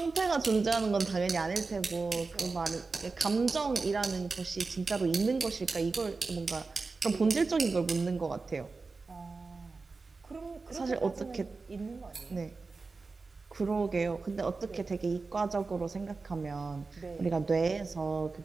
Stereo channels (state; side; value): quieter; left; 4.0 dB